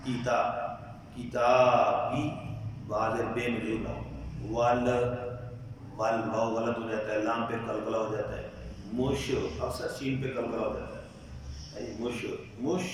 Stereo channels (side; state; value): both; identical; correlation 1.00